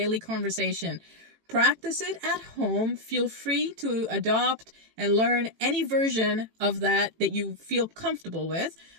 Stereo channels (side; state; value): left; late; 18 ms